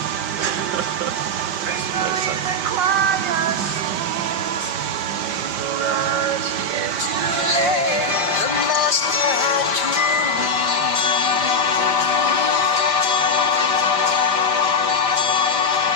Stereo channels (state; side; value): late; left; 5.1 ms